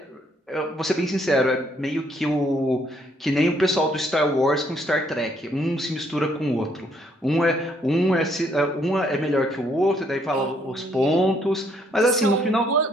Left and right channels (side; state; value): both; normal; correlation 0.69